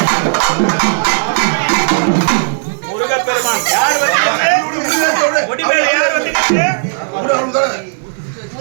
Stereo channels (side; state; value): left; silent; digital silence